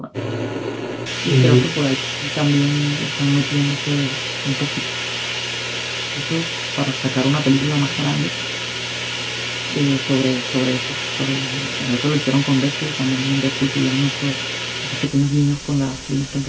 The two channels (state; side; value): identical; both; correlation 1.00